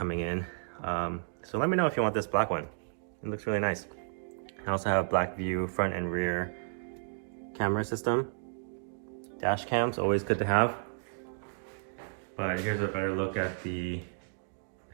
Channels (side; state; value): left; silent; digital silence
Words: in. So let me know if you want this black one. It looks really nice. I also have black view front and rear camera system. Dash cams, always good to have. But here's a better look at the